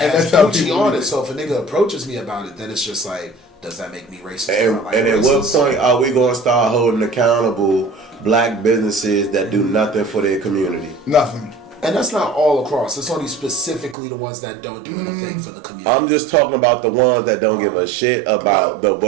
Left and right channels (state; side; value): drops out; left; at 14.0 s